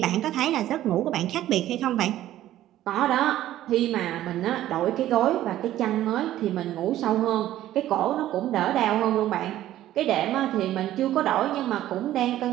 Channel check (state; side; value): quieter; left; 13.5 dB